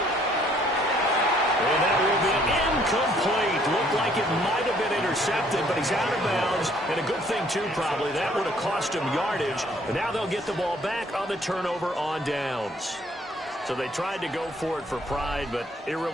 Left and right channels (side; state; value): both; normal; correlation 0.63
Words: And that will be incomplete. Looked like it might have been intercepted, but he's out of bounds. And a good thing, too, probably. That would have cost him yardage. But now they'll get the ball back on the turnover on downs. So they tried to go for it for pride, but it